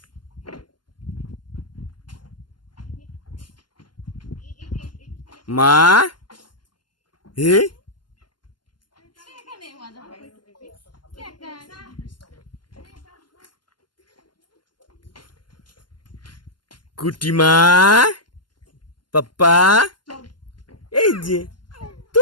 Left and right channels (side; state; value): right; late; 0.71 ms